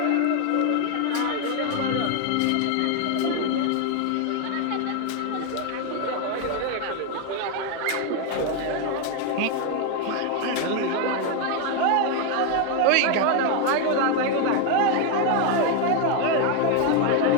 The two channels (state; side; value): different; both; correlation 0.01